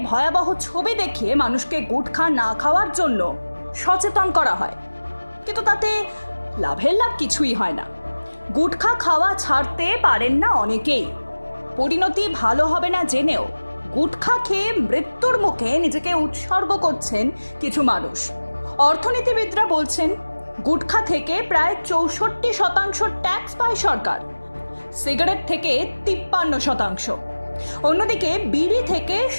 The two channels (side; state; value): both; inverted; correlation -1.00